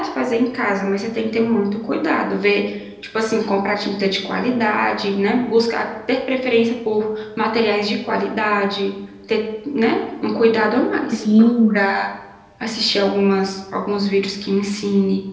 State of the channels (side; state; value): both; identical; correlation 1.00